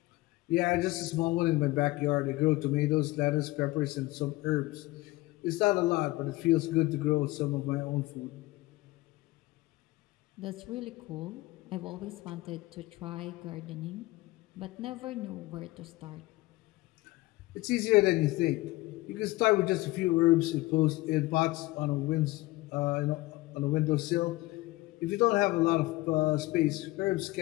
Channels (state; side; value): quieter; right; 19.8 dB